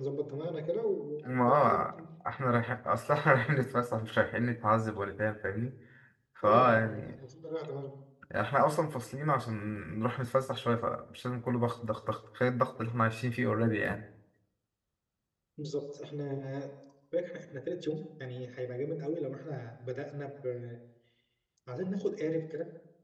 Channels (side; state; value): both; identical; correlation 1.00